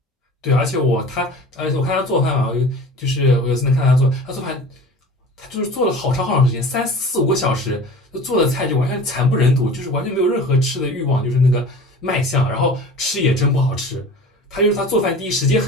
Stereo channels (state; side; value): normal; both; correlation 0.40